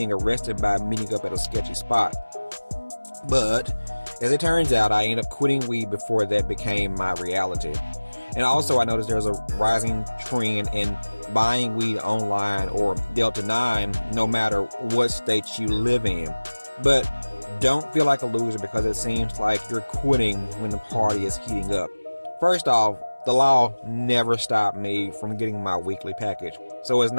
arrested by meeting up at a sketchy spot. But, as it turns out, I ended up quitting weed before that became my reality. And also I noticed there's a rising trend in buying weed online or Delta 9 no matter what state you live in. But don't feel like a loser because it seems like you're quitting when the party is heating up. First off, the law never stopped me from getting my weekly package. So it's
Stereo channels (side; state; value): both; inverted; correlation -1.00